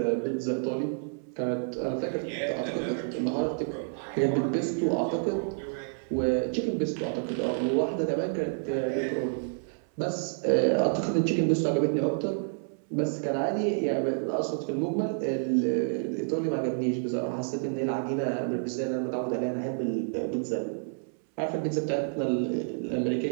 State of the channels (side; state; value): left; silent; 59 dB below the other